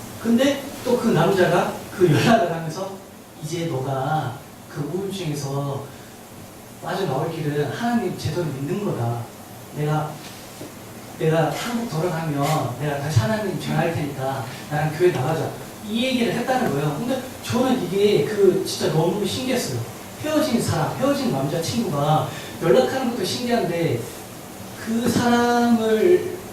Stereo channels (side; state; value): both; identical; correlation 1.00